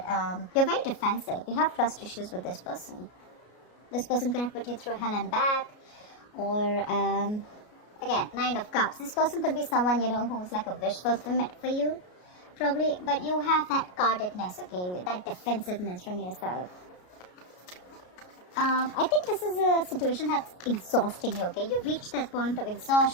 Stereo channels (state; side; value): late; right; 33 ms